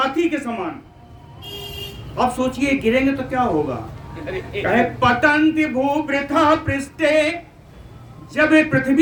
के समान। अब सोचिए गिरेंगे तो क्या होगा? कहे पतंति भूवृथा पृष्ठे, जब ये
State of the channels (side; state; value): both; identical; correlation 1.00